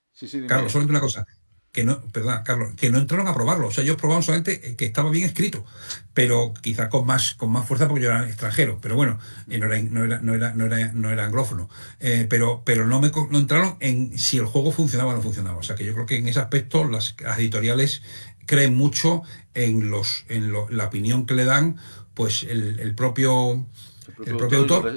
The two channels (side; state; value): both; inverted; correlation -1.00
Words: sí, sí, dime, Carlos, dime. solamente una cosa, perdón, Carlos, que no entraron a probarlo. O sea, ellos probaban solamente que estaba bien escrito, pero quizás con más fuerza porque yo era extranjero. Pero bueno, no era anglófono. Pero no entraron en si el juego funcionaba o no funcionaba. O sea, que yo creo que en ese aspecto las editoriales creen mucho la opinión que le dan, pues el propio El el propio propio autor